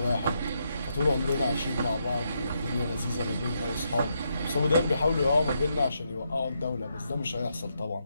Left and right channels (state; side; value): inverted; both; correlation -0.80